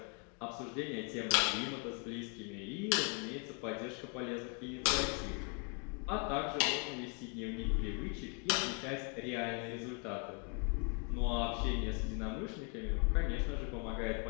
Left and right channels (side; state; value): right; quieter; 35.8 dB